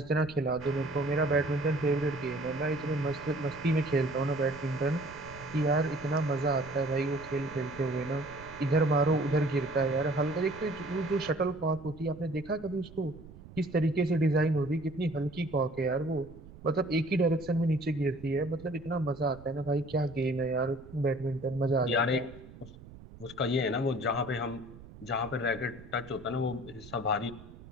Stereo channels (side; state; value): right; noise; rumble, 18 dB below the sound